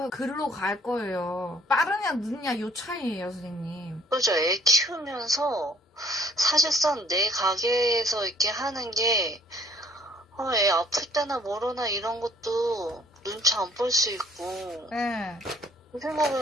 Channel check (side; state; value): both; normal; correlation 0.60